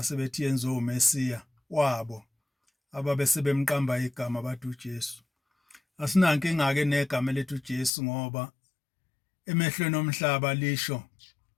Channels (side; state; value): right; drops out; at 7.9 s